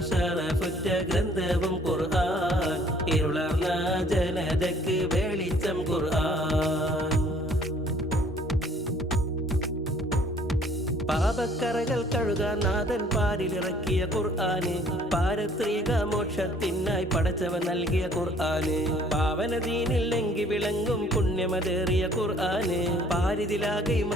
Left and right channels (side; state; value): both; normal; correlation 0.58